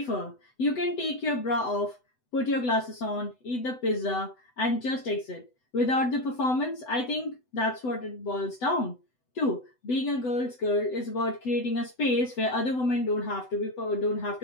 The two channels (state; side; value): late; right; 7.9 ms